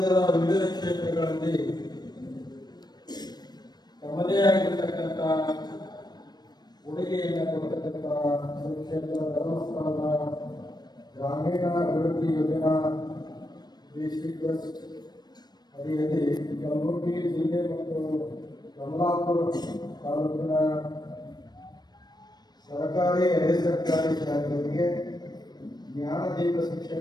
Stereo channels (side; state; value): right; late; 0.20 ms